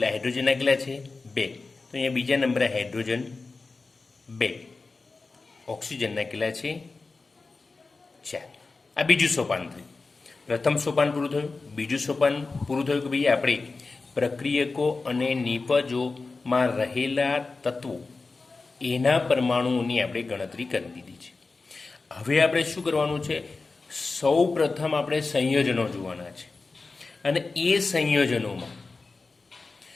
હાઇડ્રોજનના કેટલા છે? 2. તો અહીંયા બીજા નંબરે હાઇડ્રોજન 2. ઓક્સિજનના કેટલા છે? 4. આ બીજું સોપાન થયું. પ્રથમ સોપાન પૂરું થયું. બીજું સોપાન પૂરું થયું કે ભાઈ આપણે પ્રક્રિયકો અને નિપજોમાં રહેલા તત્વો એના પરમાણુઓની આપણે ગણતરી કરી દીધી છે. હવે આપણે શું કરવાનું છે? સૌ પ્રથમ આપણે સંયોજનો જોવાના છે અને એ સંયોજનોમાં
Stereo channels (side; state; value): right; quieter; 3.9 dB